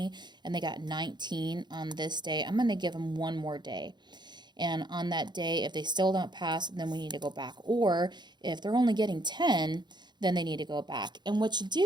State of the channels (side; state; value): left; late; 0.21 ms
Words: and they got 19 on this day, I'm going to give them 1 more day. And on that day, if they still don't pass, then we need to go back. Or if they're only getting 10, then they need to go back. And what you